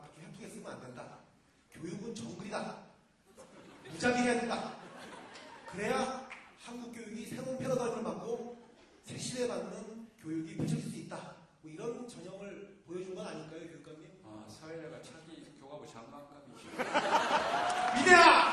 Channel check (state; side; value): identical; both; correlation 1.00